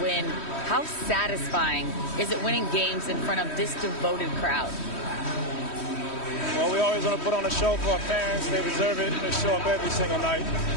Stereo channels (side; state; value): right; late; 3.1 ms